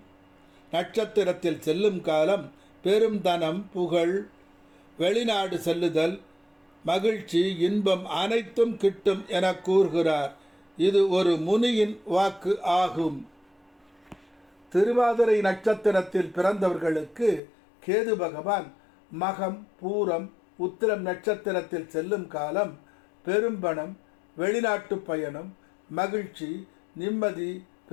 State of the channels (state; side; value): drops out; right; at 17.4 s